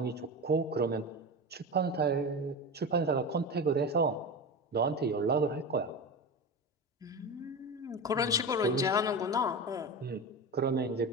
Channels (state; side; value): normal; both; correlation 0.24